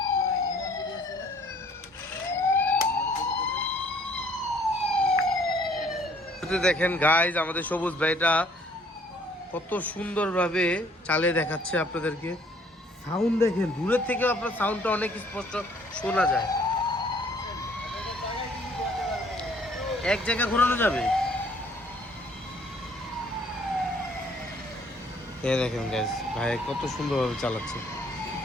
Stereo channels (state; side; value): normal; both; correlation 0.60